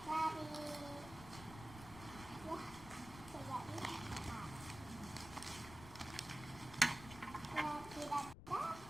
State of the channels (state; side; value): noise; left; rumble, 13 dB below the sound